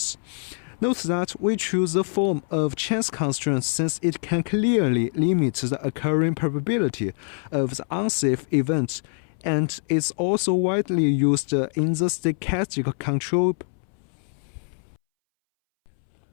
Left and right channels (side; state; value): right; silent; 62 dB below the other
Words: Note that we choose the form of chance constraints since it can clearly limit the occurring probability of the unsafe event and is also widely used in the stochastic control.